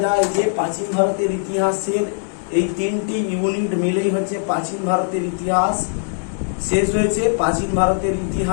যায় যে প্রাচীন ভারতের ইতিহাসের এই 3টি ইউনিট মিলেই হচ্ছে প্রাচীন ভারতের ইতিহাস শেষ হয়েছে। প্রাচীন ভারতের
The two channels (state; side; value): silent; right; digital silence